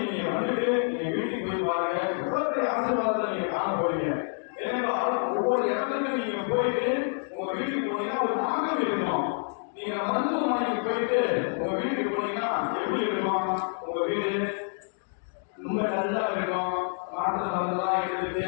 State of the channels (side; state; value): right; silent; 59 dB below the other